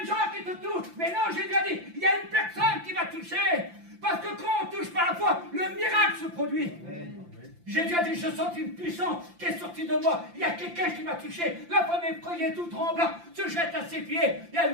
gens qui te touchent. Mais non, Jésus a dit, il y a une personne qui va toucher. Parce que quand on touche par la foi, le miracle se produit. Jésus a dit, je sens une puissance qui est sortie de moi. Il y a quelqu'un qui m'a touché. La femme effrayée, tout tremblant, se jette à ses pieds et elle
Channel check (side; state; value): left; late; 5.8 ms